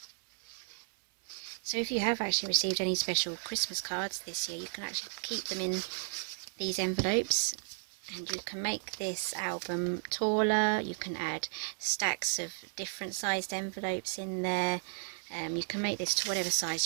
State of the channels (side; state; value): left; silent; 55 dB below the other